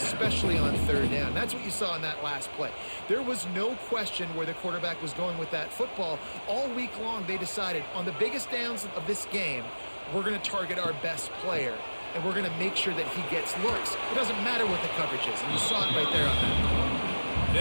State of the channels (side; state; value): both; inverted; correlation -1.00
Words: on 3rd down. That's what you saw in that last play. There was no question where the quarterback was going with that football. All week long, they decided on the biggest downs of this game, we're going to target our best player, and we're going to make sure that he gets looks. It doesn't matter what the coverage is, and you saw it right there on that.